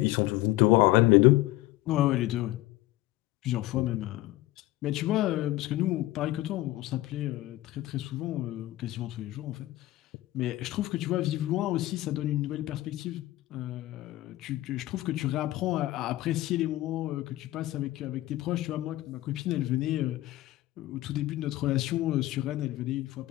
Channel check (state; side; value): quieter; right; 17.0 dB